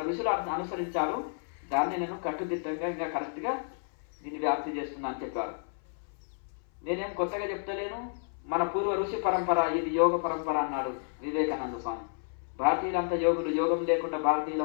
ఋషులు అనుసరించారు. దాన్ని నేను కట్టుదిట్టంగా ఇంకా కరెక్ట్గా దీన్ని వ్యాప్తి చేస్తున్నా అని చెప్పారు. నేనేం కొత్తగా చెప్తలేను. మన పూర్వ ఋషి పరంపర ఇది యోగ పరంపర అన్నాడు వివేకానంద స్వామి. భారతీయులంతా యోగులు, యోగం లేకుండా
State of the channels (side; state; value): right; silent; 57 dB below the other